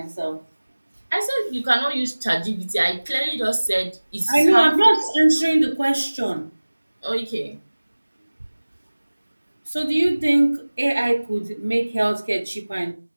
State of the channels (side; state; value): both; inverted; correlation -1.00